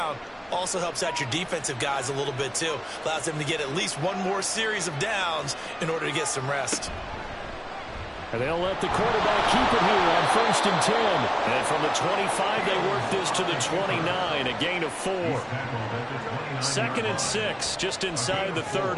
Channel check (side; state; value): both; identical; correlation 1.00